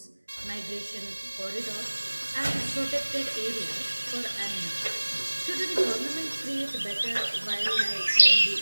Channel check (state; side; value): inverted; both; correlation -1.00